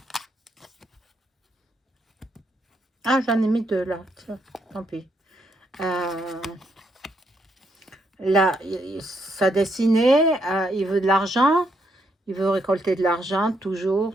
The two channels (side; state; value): both; normal; correlation 0.76